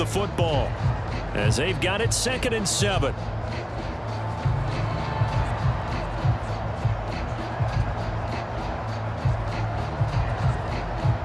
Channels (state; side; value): identical; both; correlation 1.00